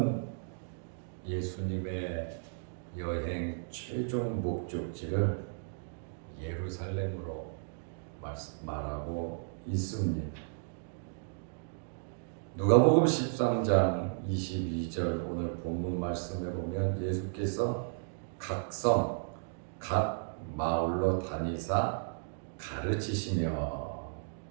예수님의 여행 최종 목적지를 예루살렘으로 말하고 있습니다. 누가복음 13장 22절 오늘 본문 말씀에 보면 예수께서 각 성, 각 마을로 다니사 가르치시며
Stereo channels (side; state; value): left; silent; digital silence